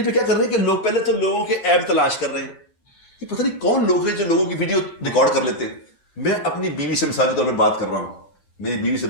پہ کیا کر رہے ہیں کہ لوگ پہلے تو لوگوں کے ایپ تلاش کر رہے ہیں، یہ پتہ نہیں کون لوگ ہیں جو لوگوں کی ویڈیو ریکارڈ کر لیتے ہیں۔ میں اپنی بیوی سے مثال کے طور پر بات کر رہا ہوں، میری بیوی سے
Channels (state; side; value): late; right; 9.7 ms